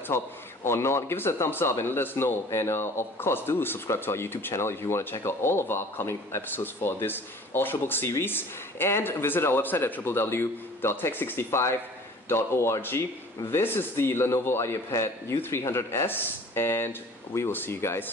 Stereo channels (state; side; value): normal; both; correlation 0.47